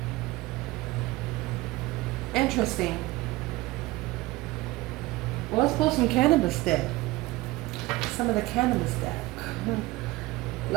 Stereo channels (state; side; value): quieter; left; 19.5 dB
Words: Interesting. Well, let's pull some Cannabis deck. Some of the Cannabis deck.